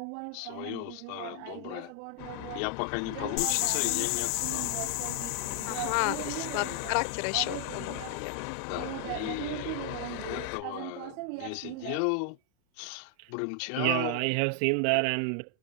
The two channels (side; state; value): both; different; correlation 0.00